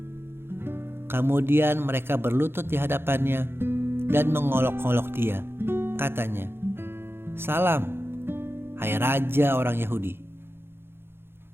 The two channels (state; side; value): late; left; 0.11 ms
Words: Kemudian mereka berlutut di hadapannya dan mengolok-olok dia. Katanya, "Salam, hai Raja orang Yahudi."